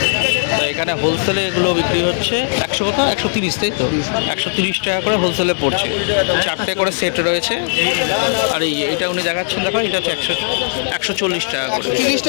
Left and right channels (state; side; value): silent; right; 67 dB below the other